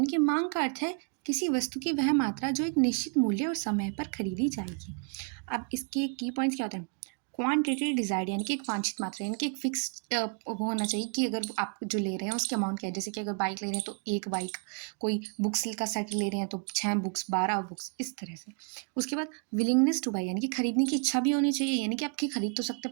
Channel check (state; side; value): quieter; left; 36.7 dB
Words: कि मांग का अर्थ है किसी वस्तु की वह मात्रा जो एक निश्चित मूल्य और समय पर खरीदी जाएगी। अब इसके की पॉइंट्स क्या होते हैं? क्वांटिटी डिजायर्ड, यानी कि एक वांछित मात्रा, यानी कि एक फिक्स होना चाहिए कि अगर आप जो ले रहे हैं उसके अमाउंट क्या है। जैसे कि अगर बाइक ले रहे हैं तो एक बाइक, कोई बुक्स का सेट ले रहे हैं तो 6 बुक्स, 12 बुक्स, इस तरह से। उसके बाद विलिंगनेस टू बाई, यानी कि खरीदने की इच्छा भी होनी चाहिए, यानी कि आपकी खरीद तो सकते हैं